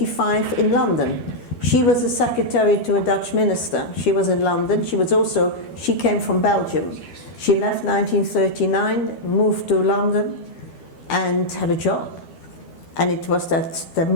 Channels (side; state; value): right; late; 12 ms